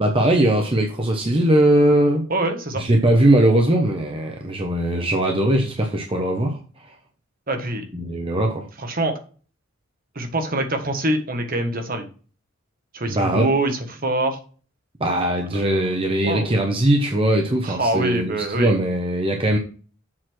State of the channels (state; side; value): normal; both; correlation 0.60